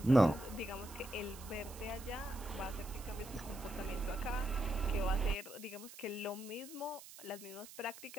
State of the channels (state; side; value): noise; right; hiss, 16 dB below the sound